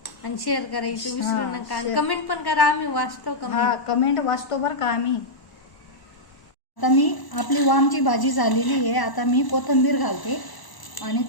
आणि शेअर करायचं विसरू हां, नका. आणि शेअर. कमेंट पण करा, आम्ही वाचतो हा कमेंट. कमेंट वाचतो बरं का आम्ही. आता मी आपली वामची भाजी झालेली आहे. आता मी कोथिंबीर घालते आणि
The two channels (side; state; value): right; late; 1.0 ms